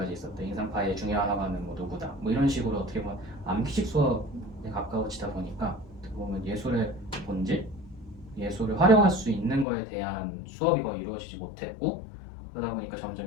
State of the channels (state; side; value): drops out; right; at 9.7 s